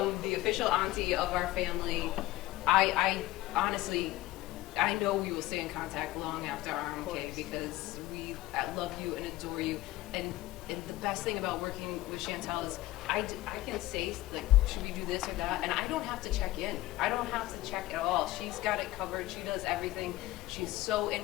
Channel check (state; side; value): quieter; right; 17.2 dB